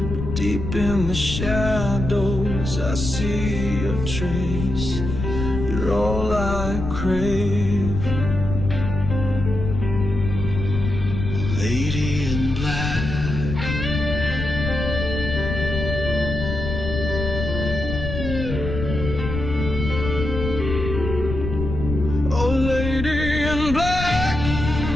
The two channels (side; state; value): left; noise; rumble, 5 dB below the sound